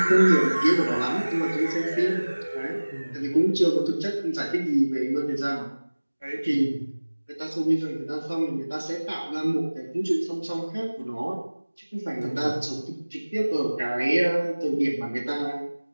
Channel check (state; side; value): inverted; both; correlation -1.00